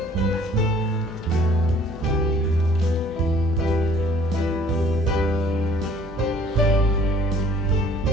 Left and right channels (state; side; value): normal; both; correlation 0.54